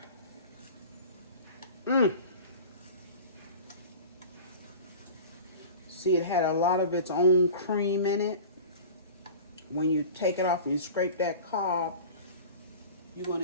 See, it had a lot of its own cream in it. When you take it off and you scrape that cob, you're going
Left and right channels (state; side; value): inverted; both; correlation -0.38